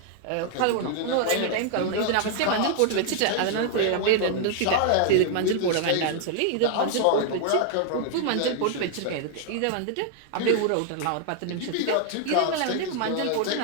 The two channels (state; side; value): different; both; correlation 0.00